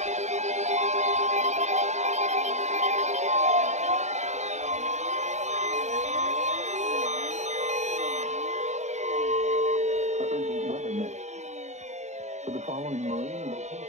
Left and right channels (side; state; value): left; late; 0.33 ms